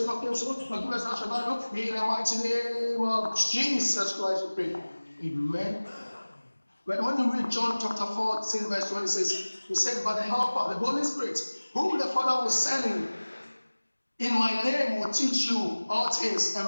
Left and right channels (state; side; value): inverted; both; correlation -1.00